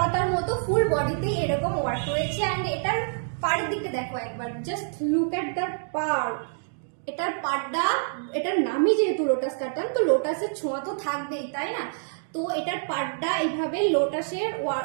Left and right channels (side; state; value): left; silent; digital silence